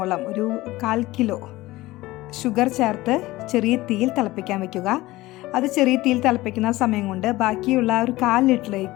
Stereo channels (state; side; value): quieter; right; 18.5 dB